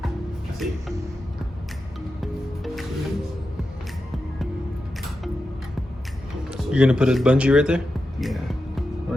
I see. You're gonna put a bungee right there? Yeah.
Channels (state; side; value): normal; both; correlation 0.90